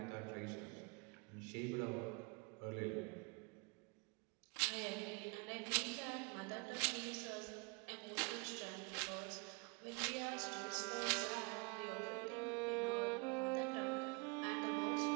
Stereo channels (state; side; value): quieter; left; 30.8 dB